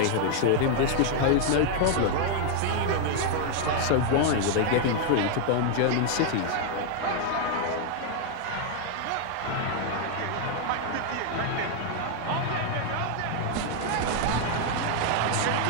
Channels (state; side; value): different; both; correlation 0.00